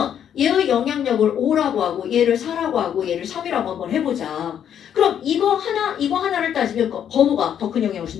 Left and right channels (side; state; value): right; quieter; 9.2 dB